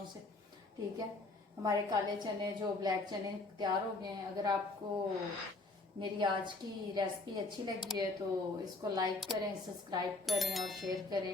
से। ठीक है, हमारे काले चने जो ब्लैक चने तैयार हो गए हैं। अगर आपको मेरी आज की रेसिपी अच्छी लगी है तो इसको लाइक करें, सब्सक्राइब करें और शेयर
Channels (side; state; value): right; quieter; 3.3 dB